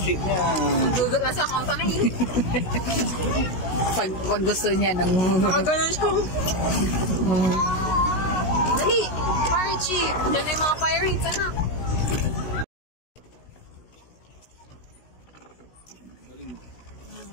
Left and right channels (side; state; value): right; late; 16 ms